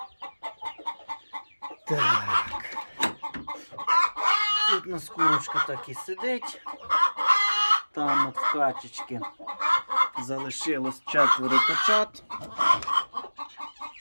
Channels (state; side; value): inverted; both; correlation -1.00